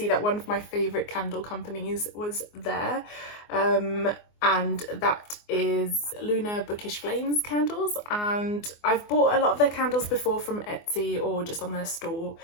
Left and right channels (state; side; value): late; right; 24 ms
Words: that one of my favourite candle companies was there, and that is Lunar Bookish Flames candles, and I've bought a lot of their candles before from Etsy or just on their store,